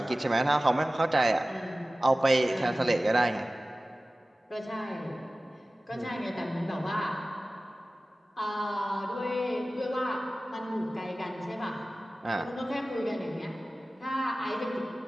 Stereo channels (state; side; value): normal; both; correlation 0.97